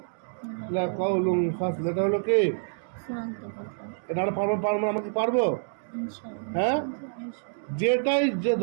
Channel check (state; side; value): silent; left; digital silence